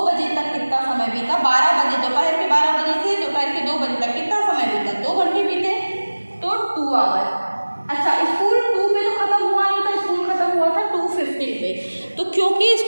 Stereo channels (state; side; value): inverted; both; correlation -1.00